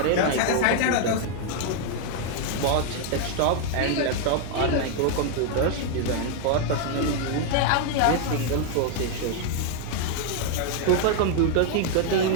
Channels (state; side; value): different; both; correlation 0.00